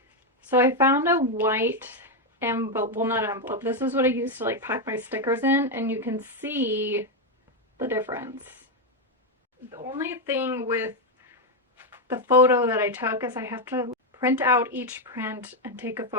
So I found a white envelope, well not envelope, this is what I used to like pack my stickers in, and you can see the difference. The only thing with the photo that I took is I have to print out each print and take a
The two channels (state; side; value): normal; both; correlation 0.04